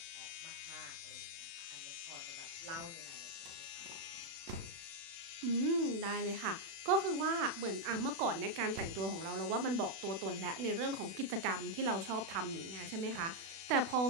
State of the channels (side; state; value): left; late; 36 ms